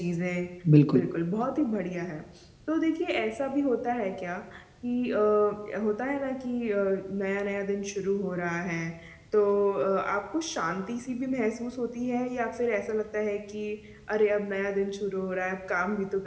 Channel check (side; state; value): both; identical; correlation 1.00